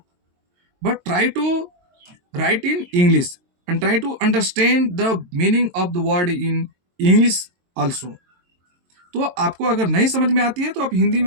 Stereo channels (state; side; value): late; left; 22 ms